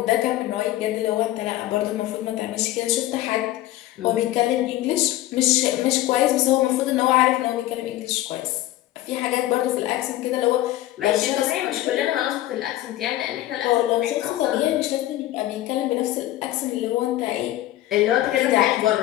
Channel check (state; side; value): quieter; right; 15.1 dB